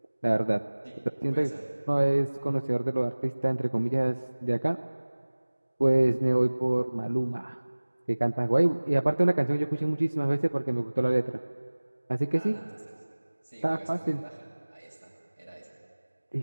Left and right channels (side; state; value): both; inverted; correlation -1.00